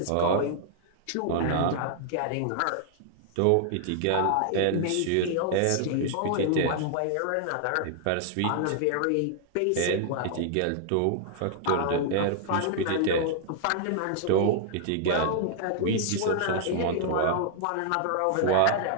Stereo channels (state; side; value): different; both; correlation -0.01